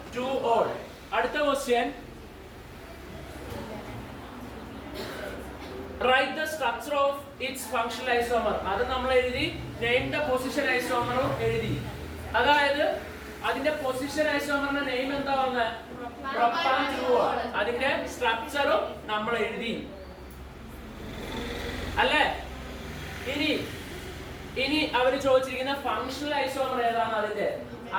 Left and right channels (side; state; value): both; identical; correlation 1.00